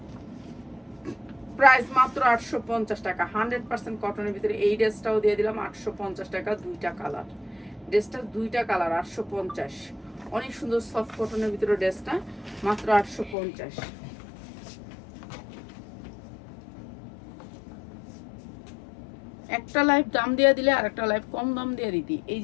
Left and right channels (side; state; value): right; drops out; at 13.4 s